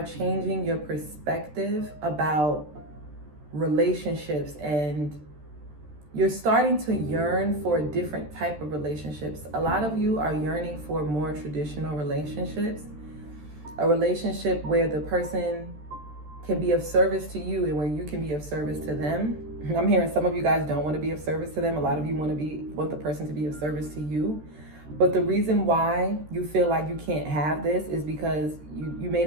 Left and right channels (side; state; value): left; late; 13 ms